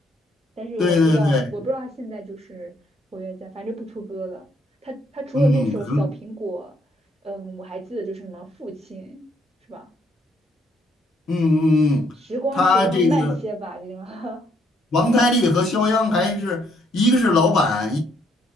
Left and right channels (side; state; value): both; normal; correlation 0.70